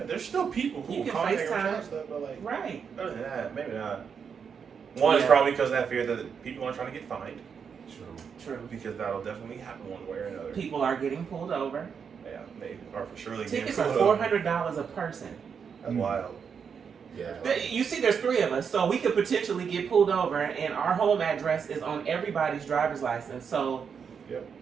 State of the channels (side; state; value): left; quieter; 6.6 dB